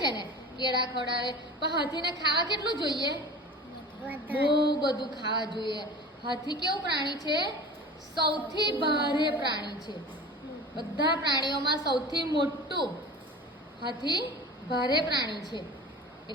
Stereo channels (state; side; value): normal; both; correlation 0.37